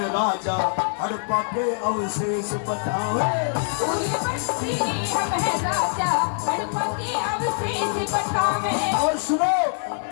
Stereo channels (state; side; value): silent; right; 63 dB below the other